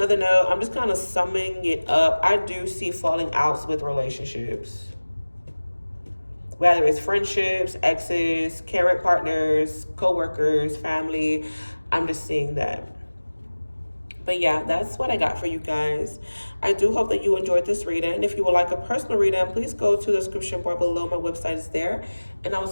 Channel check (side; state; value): both; inverted; correlation -1.00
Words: note, I'm just kind of summing it up. I do see falling outs with relationships. Whether it's friendships, exes, current partners, co-workers, family. I'm just seeing that. But yeah, that's what I got for you guys. I do hope that you enjoyed this reading. If you would like a personal reading, please go to the description bar below. My website is there. And I will